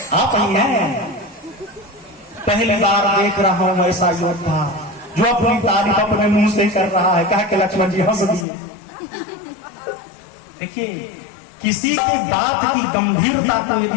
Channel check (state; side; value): drops out; right; at 8.5 s